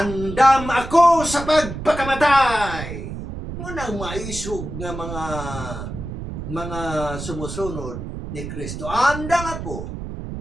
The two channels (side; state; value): right; noise; rumble, 8 dB below the sound